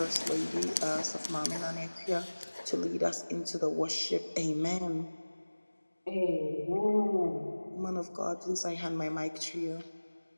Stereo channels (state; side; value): inverted; both; correlation -1.00